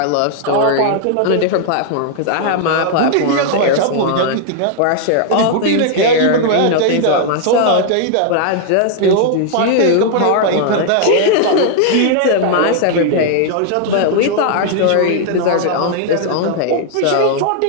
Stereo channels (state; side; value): different; both; correlation -0.01